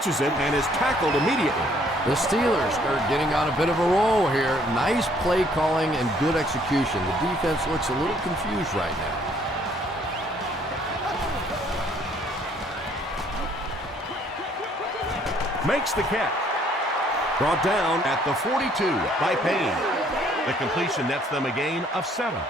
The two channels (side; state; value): both; normal; correlation 0.63